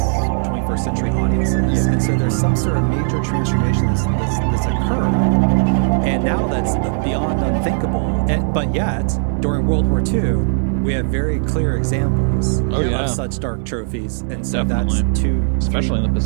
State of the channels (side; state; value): left; silent; digital silence